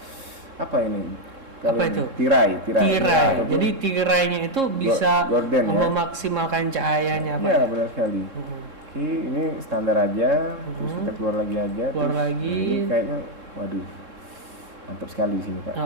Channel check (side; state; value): left; late; 3.7 ms